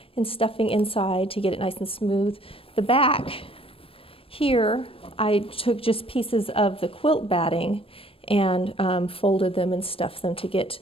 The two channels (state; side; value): late; right; 0.27 ms